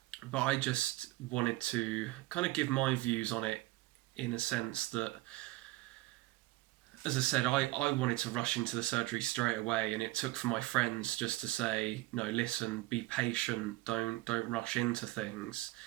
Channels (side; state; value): left; quieter; 19.2 dB